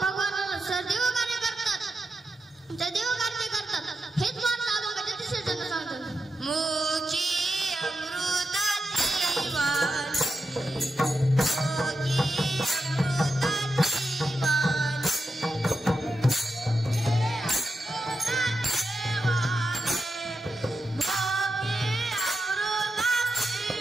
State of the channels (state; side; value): normal; both; correlation 0.88